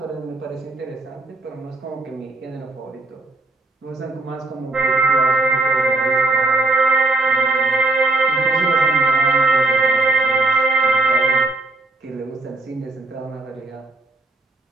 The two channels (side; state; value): left; quieter; 3.1 dB